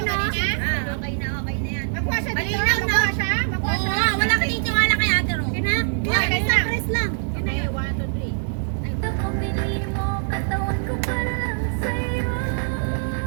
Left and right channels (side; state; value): left; silent; 63 dB below the other